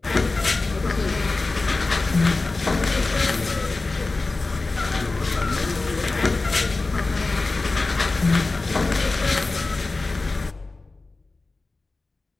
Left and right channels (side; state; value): right; quieter; 3.5 dB